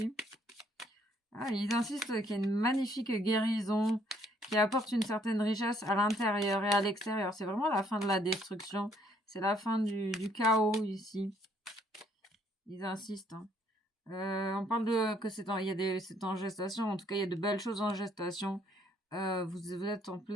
Ah, ils insistent qu'il y a une magnifique guérison qui apporte une certaine richesse à l'intérieur et à l'extérieur. C'est vraiment la fin de la destruction, c'est la fin du chaos ici. Ils insistent, hein. On parle de que c'est en gestation. En tout cas, il y a de belles choses en gestation. Vous êtes en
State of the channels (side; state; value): both; normal; correlation 0.66